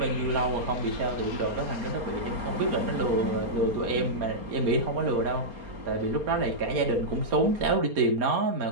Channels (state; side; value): late; left; 4.3 ms